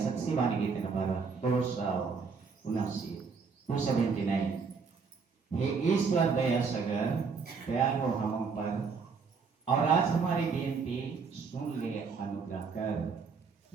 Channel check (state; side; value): quieter; left; 5.2 dB